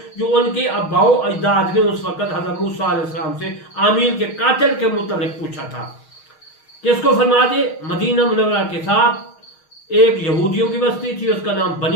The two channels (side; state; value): right; late; 6.4 ms